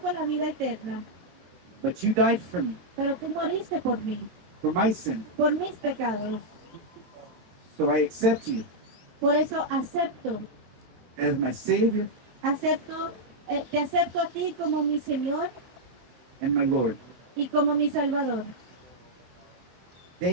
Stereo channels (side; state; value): left; late; 22 ms